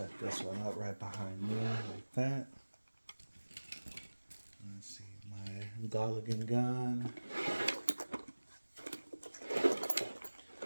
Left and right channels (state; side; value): inverted; both; correlation -1.00